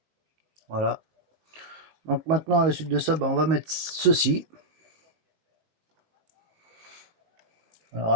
Voilà. Donc maintenant, à la suite de ça, bah, on va mettre ceci. Alors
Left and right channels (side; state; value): left; late; 19 ms